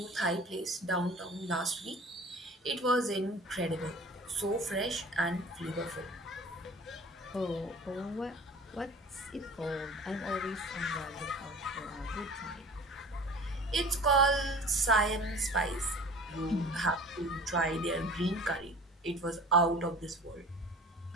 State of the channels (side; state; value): both; normal; correlation 0.43